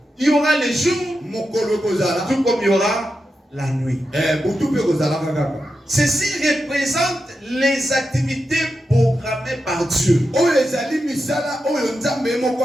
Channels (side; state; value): both; normal; correlation 0.88